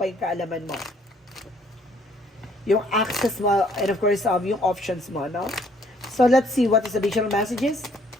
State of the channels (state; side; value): normal; both; correlation 0.63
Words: yung kaalaman mo. Yung access mo, and of course, yung options mo, no? So, let's see what is the additional messages.